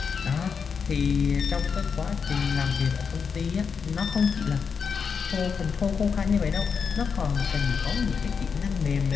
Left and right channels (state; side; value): quieter; right; 6.0 dB